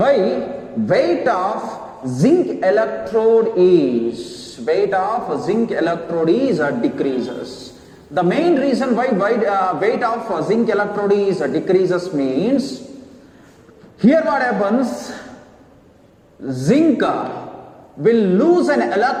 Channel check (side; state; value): both; identical; correlation 1.00